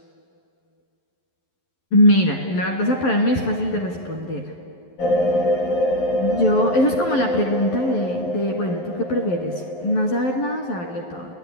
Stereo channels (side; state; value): right; late; 11 ms